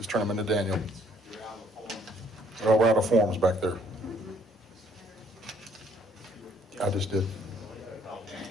turn them into Daniel. Oh, we're out of forms back there. I just did.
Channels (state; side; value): normal; both; correlation 0.63